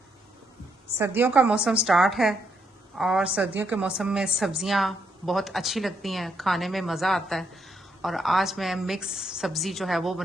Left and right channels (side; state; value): both; normal; correlation 0.76